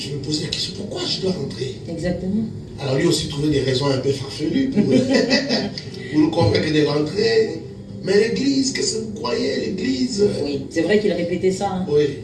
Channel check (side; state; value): both; identical; correlation 1.00